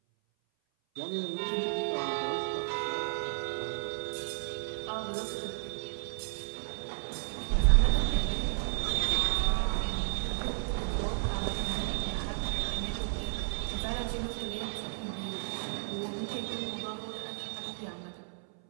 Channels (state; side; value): silent; left; 56 dB below the other